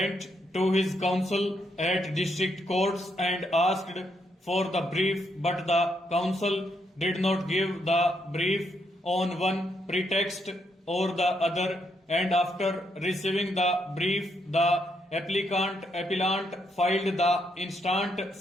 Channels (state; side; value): normal; both; correlation 0.77